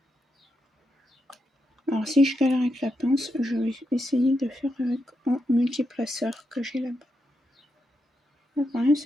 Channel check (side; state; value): both; normal; correlation 0.84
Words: Alors si je galère avec la pince, je vais essayer de faire avec un multiplaceur que j'ai là-bas. Le problème